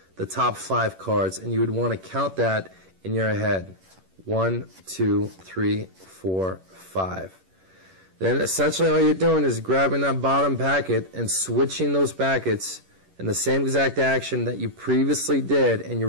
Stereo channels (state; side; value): late; left; 11 ms